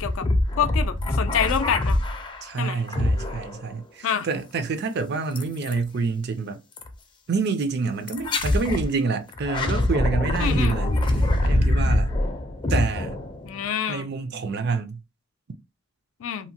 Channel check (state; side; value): normal; both; correlation 0.64